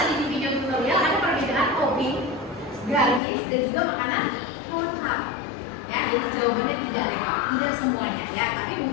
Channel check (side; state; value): right; drops out; at 3.2 s